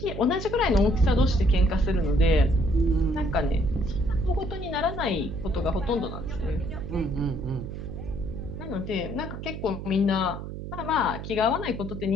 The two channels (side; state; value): right; noise; hum, 8 dB below the sound